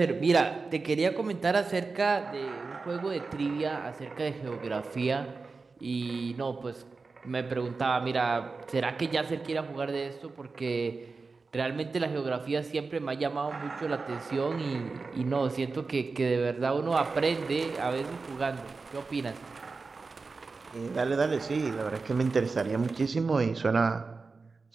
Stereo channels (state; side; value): quieter; left; 4.2 dB